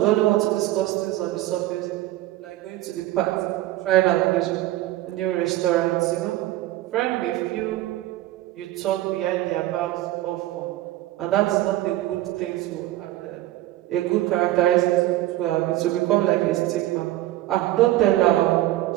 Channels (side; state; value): left; quieter; 15.8 dB